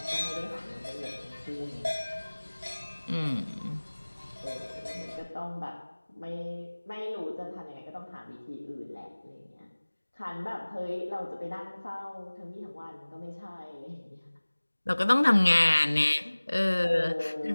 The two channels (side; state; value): both; inverted; correlation -1.00